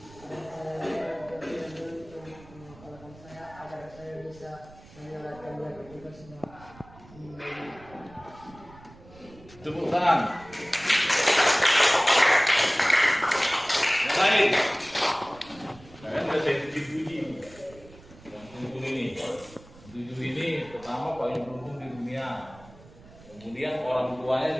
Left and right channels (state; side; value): noise; right; rumble, 22 dB below the sound